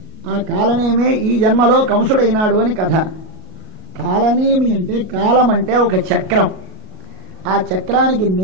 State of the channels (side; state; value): left; late; 37 ms